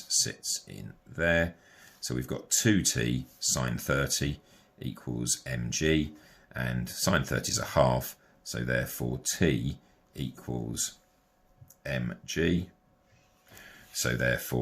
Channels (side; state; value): both; identical; correlation 1.00